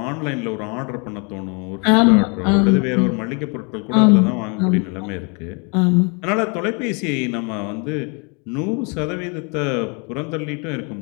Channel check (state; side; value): quieter; right; 33.6 dB